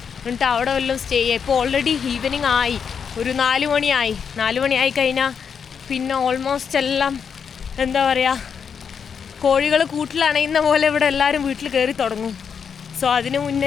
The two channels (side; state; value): right; quieter; 6.8 dB